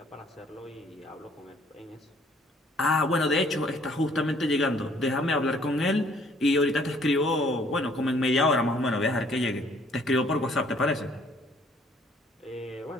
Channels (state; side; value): normal; both; correlation 0.61